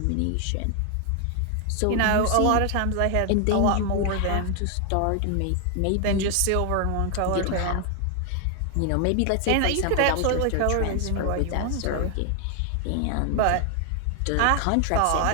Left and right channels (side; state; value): both; different; correlation 0.00